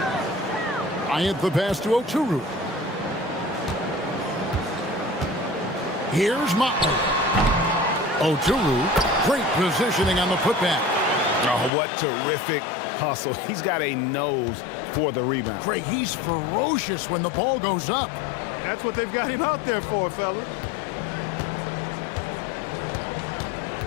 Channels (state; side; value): drops out; right; at 11.7 s